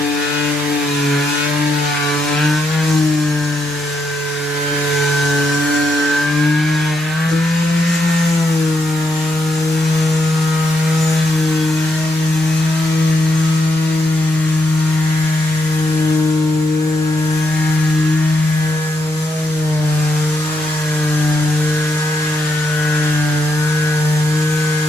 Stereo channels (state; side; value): normal; both; correlation 0.79